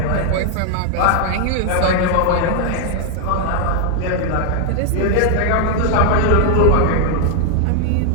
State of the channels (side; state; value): both; different; correlation 0.00